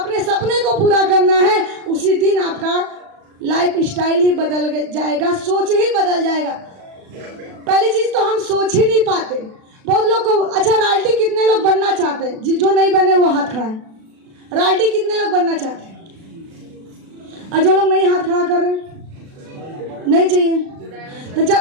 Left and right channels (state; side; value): late; left; 36 ms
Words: सपने को पूरा करना है, उसी दिन आपका लाइफ स्टाइल ही बदल जाएगा, सोच ही बदल जाएगा। पहली चीज तो हम सोच ही नहीं पाते। बहुत लोग को, अच्छा रॉयल्टी कितने लोग बनना चाहते हैं? जो नहीं बने वो हाथ खड़ा है। रॉयल्टी कितने लोग बनना चाहते हैं? और जो लोग नहीं हाथ खड़ा कर रहे हैं, नहीं चाहिए। तो